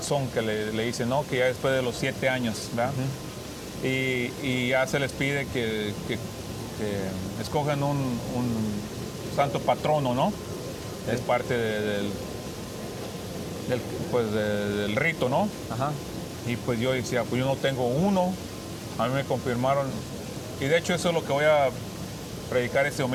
que le dicen, ¿no? Que ya después de los 7 años, ¿verdad? Uh-huh. Y ya se les pide que escojan un santo patrono, ¿no? Es parte del rito, ¿no? Ajá. Y pues yo decía, pues yo no tengo uno. A mí me confirmaron. Y de hecho eso es lo que voy a predicar este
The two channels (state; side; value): identical; both; correlation 1.00